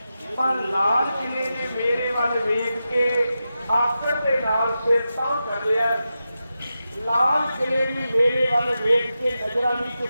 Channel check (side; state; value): both; inverted; correlation -0.91